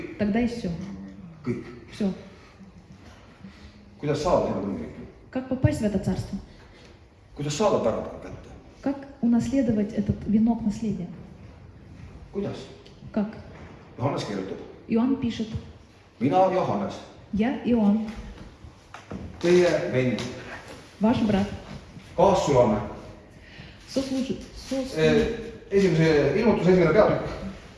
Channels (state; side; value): identical; both; correlation 1.00